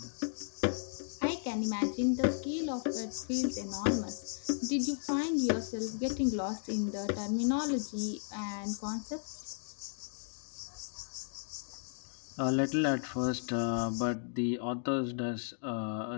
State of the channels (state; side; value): silent; right; digital silence